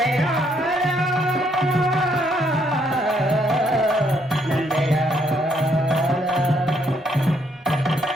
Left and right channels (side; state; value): both; normal; correlation 0.71